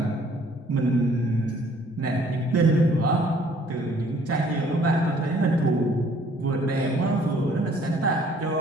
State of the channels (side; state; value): both; normal; correlation 0.59